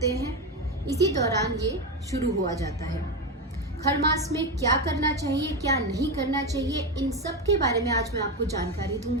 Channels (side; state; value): both; normal; correlation 0.14